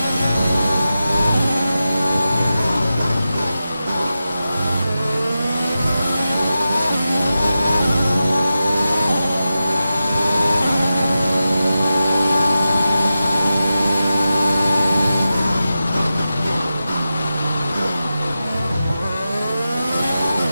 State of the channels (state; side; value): inverted; both; correlation -0.91